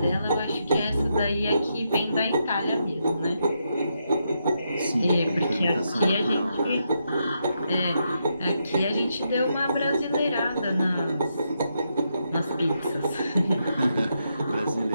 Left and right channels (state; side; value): inverted; both; correlation -0.81